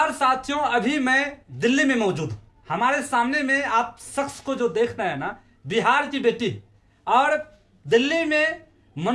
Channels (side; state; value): both; identical; correlation 1.00